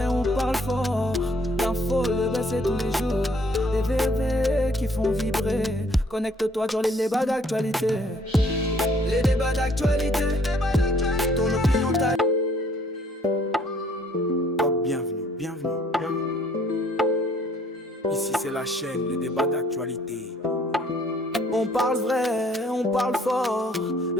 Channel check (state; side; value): normal; both; correlation 0.61